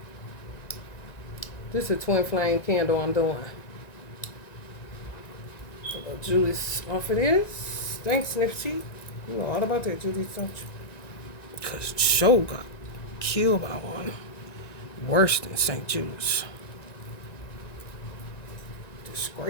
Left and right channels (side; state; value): right; late; 1.9 ms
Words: This is a twin flame candle I'm doing. Judas off of this. Thanks, Nipsey. You know all about that, Judas, don't you? Because Joe got killed by one worse than St. Judas.